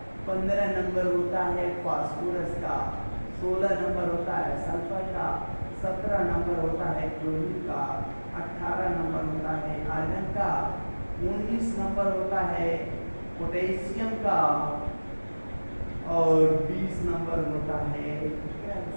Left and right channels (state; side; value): inverted; both; correlation -1.00